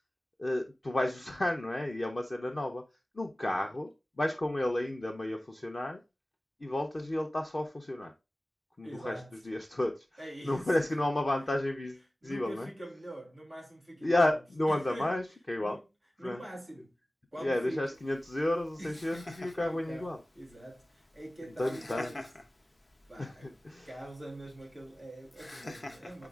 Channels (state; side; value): normal; both; correlation 0.97